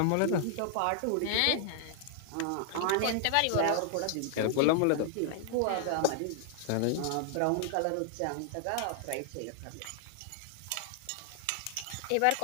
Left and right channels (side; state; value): both; different; correlation -0.01